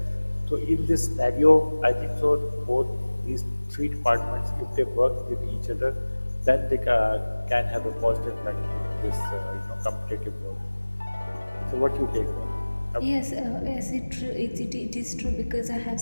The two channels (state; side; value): inverted; both; correlation -1.00